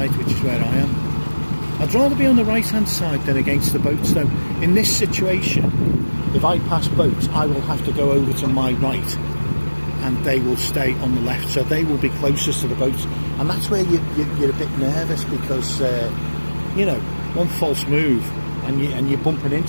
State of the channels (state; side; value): inverted; both; correlation -1.00